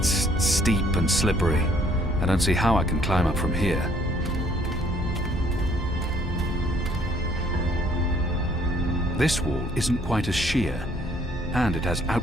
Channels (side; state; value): both; normal; correlation 0.62